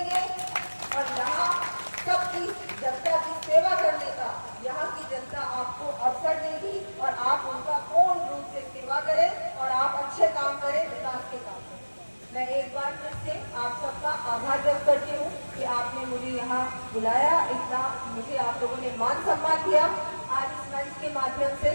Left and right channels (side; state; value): both; inverted; correlation -1.00